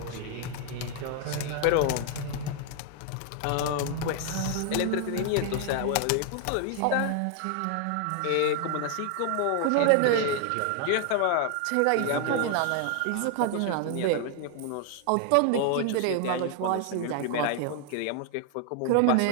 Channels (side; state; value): both; different; correlation 0.00